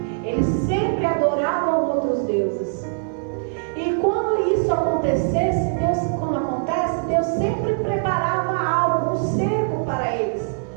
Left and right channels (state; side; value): silent; left; digital silence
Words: Eles sempre adoravam outros deuses. E quando isso acontecesse, Deus sempre preparava algo, um cerco para eles